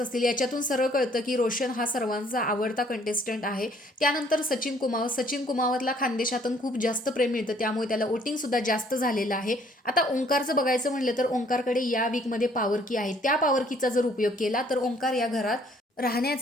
याच्यातून सरळ कळतं की रोशन हा सर्वांचा आवडता कंटेस्टंट आहे. त्यानंतर सचिन कुमावत. सचिन कुमावतला खानदेशातून खूप जास्त प्रेम मिळतं त्यामुळे त्याला वोटिंग सुद्धा जास्त झालेलं आहे. आता ओंकारचं बघायचं म्हणलं तर ओंकारकडे या वीकमध्ये पॉवर की आहे. त्या पॉवर कीचा जर उपयोग केला तर ओंकार या घरात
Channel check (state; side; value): normal; both; correlation 0.61